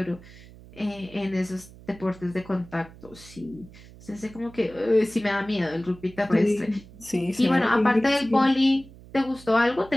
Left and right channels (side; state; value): right; noise; hum, 20 dB below the sound